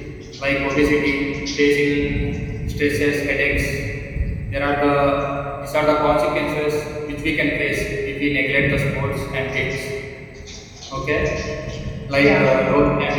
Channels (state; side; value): identical; both; correlation 1.00